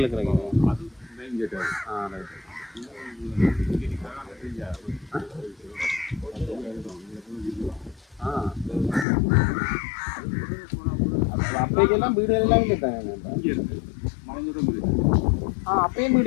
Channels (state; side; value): drops out; right; at 9.1 s